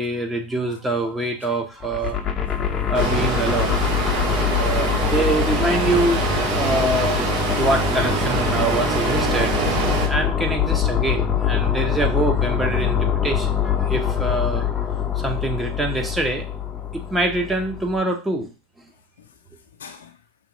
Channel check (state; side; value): normal; both; correlation 0.38